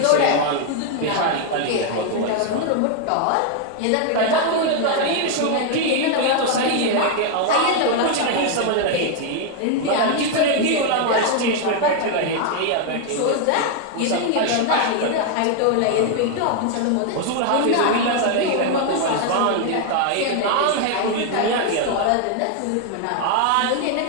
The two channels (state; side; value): different; both; correlation 0.00